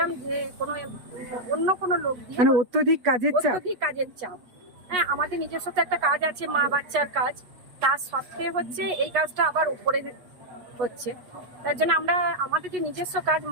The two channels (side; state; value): left; late; 8.2 ms